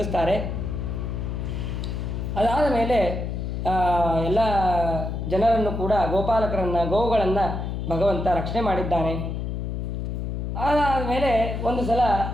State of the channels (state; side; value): noise; left; hum, 3 dB below the sound